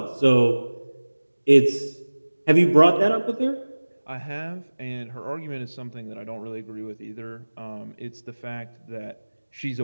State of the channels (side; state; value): both; inverted; correlation -1.00